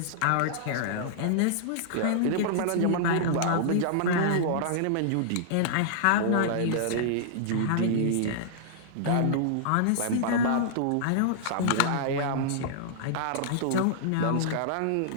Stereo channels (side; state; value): both; different; correlation -0.02